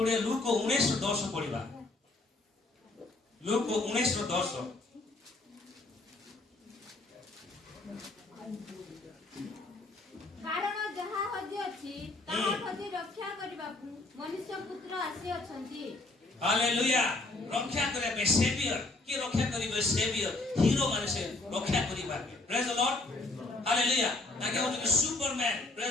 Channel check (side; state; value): right; quieter; 3.1 dB